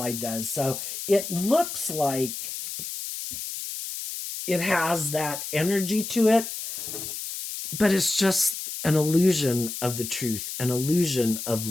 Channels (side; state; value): left; noise; hiss, 7 dB below the sound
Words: does. So it looks like it has that energy to it, but it's just an illusion of the truth, an illusion of